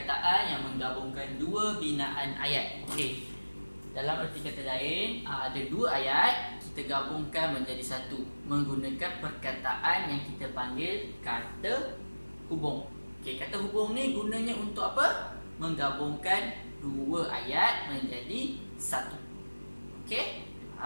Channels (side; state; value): both; inverted; correlation -1.00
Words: yang menggabungkan dua binaan ayat. Okey. Dalam erti kata lain, ada dua ayat kita gabungkan menjadi satu menggunakan perkataan yang kita panggil kata hubung. Okey, kata hubung ni gunanya untuk apa? Menggabungkan dua ayat menjadi satu. Okey?